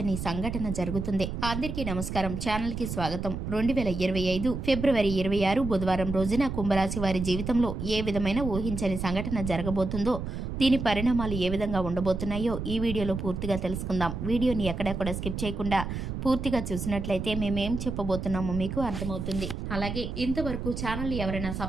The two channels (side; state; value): right; noise; rumble, 5 dB below the sound